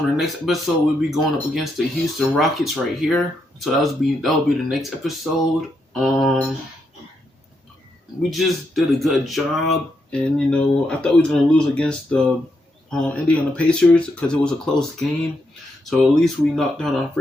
the next episode we'll be going up against the Houston Rockets right here. So that'll be the next episode. We just did a good job, and you know, I thought we was gonna lose against the Indiana Pacers because it was a close game. So at least we knocked down our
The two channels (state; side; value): normal; both; correlation 0.81